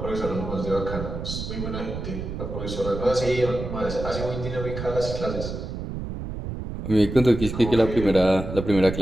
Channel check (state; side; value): noise; right; rumble, 6 dB below the sound